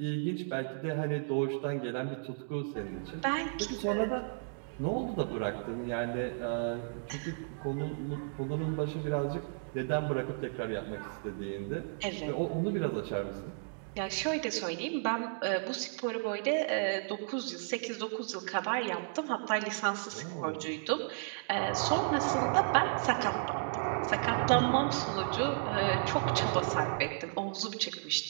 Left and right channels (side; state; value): left; silent; digital silence